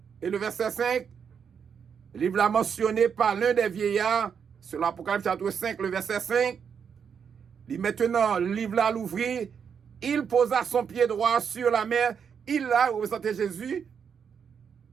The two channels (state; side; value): quieter; left; 7.0 dB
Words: et le verset 5. Le livre là mentionné par l'un des vieillards, c'est l'Apocalypse chapitre 5, le verset 5. Il maintenant, le livre là l'ouvrit, il posa son pied droit sur la mer, il a représenté Jésus,